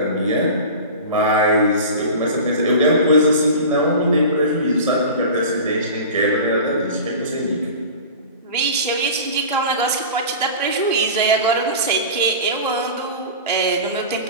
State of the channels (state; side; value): inverted; both; correlation -0.34